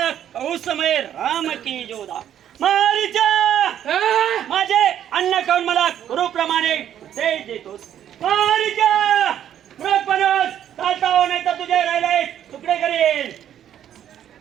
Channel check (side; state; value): left; quieter; 10.4 dB